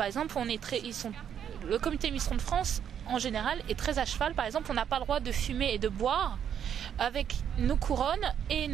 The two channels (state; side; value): quieter; left; 8.9 dB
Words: exemple, le comité Miss Ronde France en général est très à cheval. Par exemple, on n'a pas le droit de fumer et de boire avec nos couronnes et